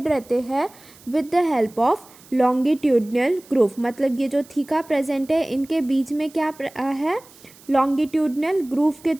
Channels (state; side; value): noise; right; hiss, 24 dB below the sound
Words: रहते हैं with the help of longitudinal groove. मतलब ये जो थीका प्रेजेंट है इनके बीच में क्या है? लॉन्गिट्यूडनल ग्रूव के